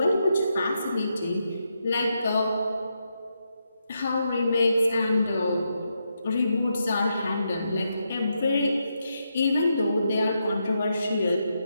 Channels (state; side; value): inverted; both; correlation -0.83